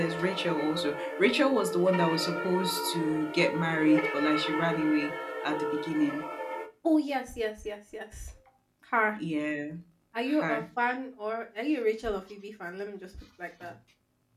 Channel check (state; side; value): identical; both; correlation 1.00